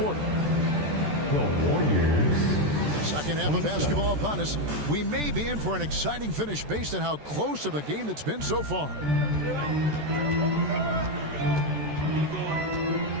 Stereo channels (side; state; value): left; late; 14 ms